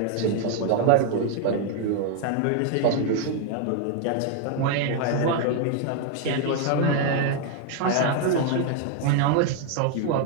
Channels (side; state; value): both; different; correlation 0.00